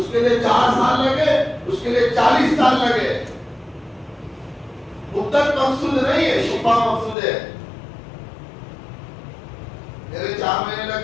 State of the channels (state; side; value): drops out; right; at 7.2 s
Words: کے لیے 4 سال لگے, اس کے لیے 40 سال لگے. مدت مقصود نہیں ہے, شفا مقصود ہے. میرے 4 مہینے